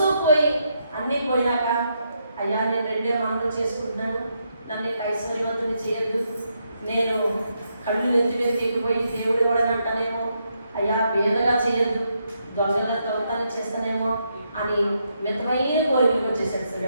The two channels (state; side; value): inverted; both; correlation -0.80